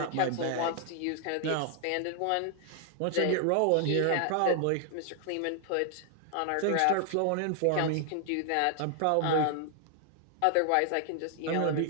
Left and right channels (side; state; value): both; different; correlation 0.00